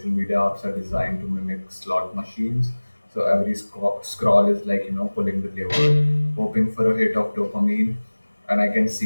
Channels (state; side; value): inverted; both; correlation -1.00